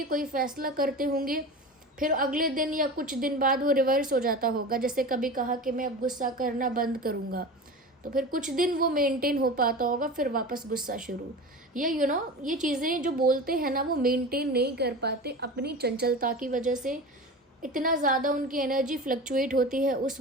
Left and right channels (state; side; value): normal; both; correlation 0.31